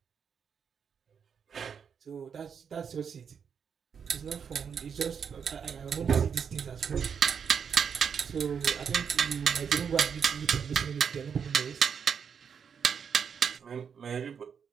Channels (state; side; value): quieter; left; 7.0 dB